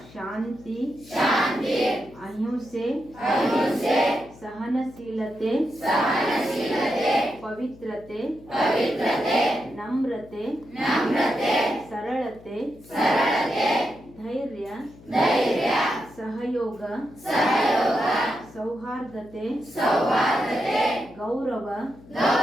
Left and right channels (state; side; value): noise; left; hum, 22 dB below the sound